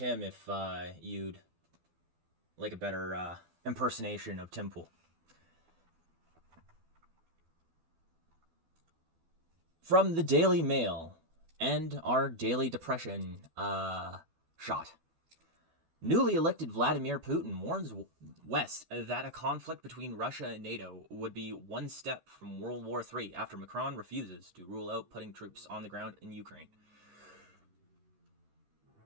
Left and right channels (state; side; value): late; left; 12 ms